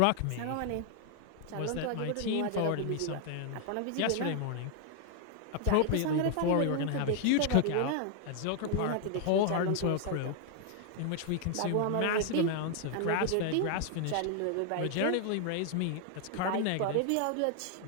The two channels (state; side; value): different; both; correlation 0.00